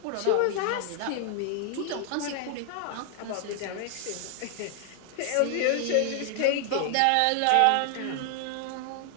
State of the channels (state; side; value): different; both; correlation 0.00